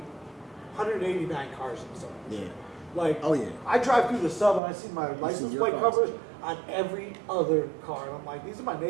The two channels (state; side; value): drops out; left; at 4.6 s